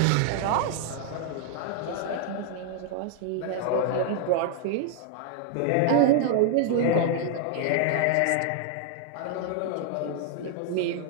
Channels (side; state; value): both; different; correlation 0.00